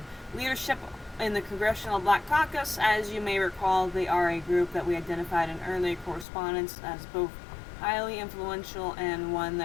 leadership in the Congressional Black Caucus. As you may recall, they are a group that we identified in early correspondence as both highly influential and one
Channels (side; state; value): right; drops out; at 6.2 s